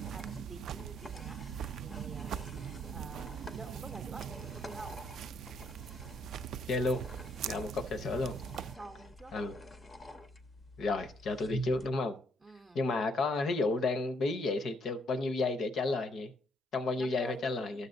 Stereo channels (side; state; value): both; normal; correlation 0.70